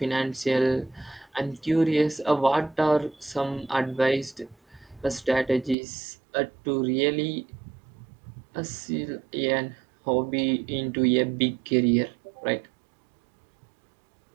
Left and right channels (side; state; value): left; drops out; at 5.8 s